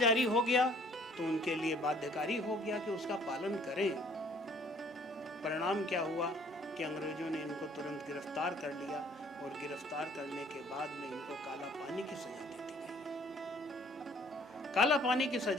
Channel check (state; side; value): normal; both; correlation 0.58